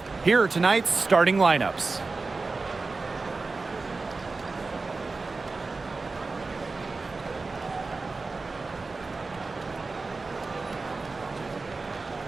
here are tonight's starting lineups.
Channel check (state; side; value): quieter; left; 3.8 dB